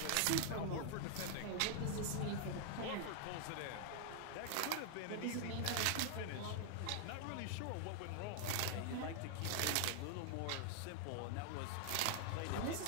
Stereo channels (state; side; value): different; both; correlation 0.00